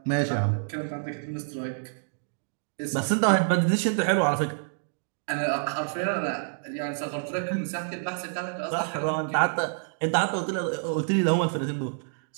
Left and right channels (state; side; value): silent; left; digital silence